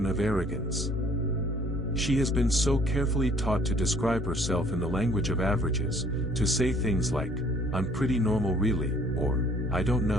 of arrogance. She has been so carefully taught to describe herself in the language of averages, to say things like, "I'm pretty normal really," or, "I don't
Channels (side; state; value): both; normal; correlation 0.58